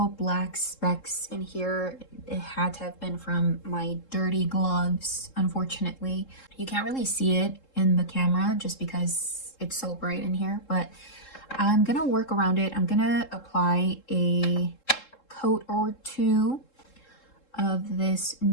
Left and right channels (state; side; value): late; right; 3.7 ms